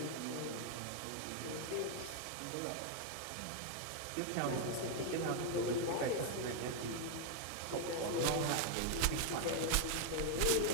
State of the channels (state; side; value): different; both; correlation 0.00